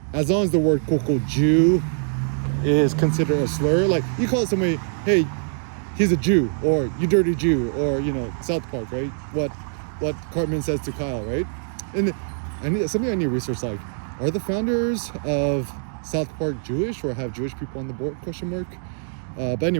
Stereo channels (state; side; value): silent; left; digital silence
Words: as long as the word quote unquote Jew is considered a slur, like you call somebody, hey, he's a Jew, or you dirty Jew, or South Park, right? What Cartman says to Kyle, right? And I need to research, like, are the founders of South Park Jewish, or have Jewish people on the board? ? But